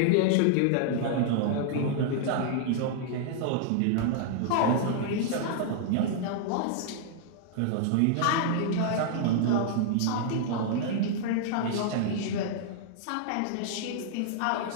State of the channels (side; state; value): both; different; correlation -0.01